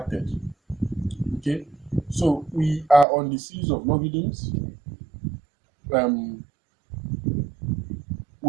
Okay, so we are on the series of logarithms.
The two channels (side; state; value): left; drops out; at 3.1 s